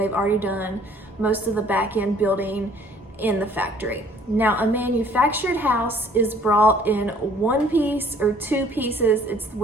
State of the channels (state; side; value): normal; both; correlation 0.57